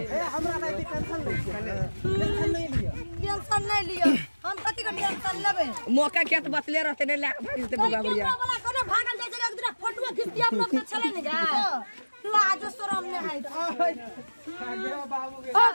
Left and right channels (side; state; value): both; inverted; correlation -1.00